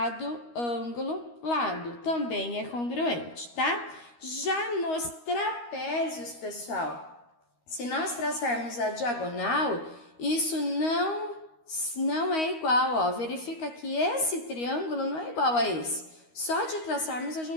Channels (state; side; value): late; right; 13 ms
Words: ângulo, lado, também é congruente, tá? Já nos trapézios, pessoal, se nós traçarmos a diagonal, isso não é igual, ó. Verifica que esse triângulo não é igual a esse. Só de traçarmos a